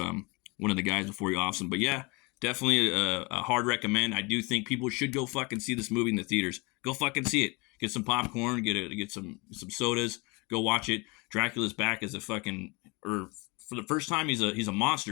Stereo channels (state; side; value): quieter; right; 27.6 dB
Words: one of the guys before he offs him. But yeah, definitely a hard recommend. I do think people should go fucking see this movie in the theaters. Go fucking see it. Get some popcorn. Get some sodas. Go watch it. Dracula's back as a fucking, or for the first time, he's a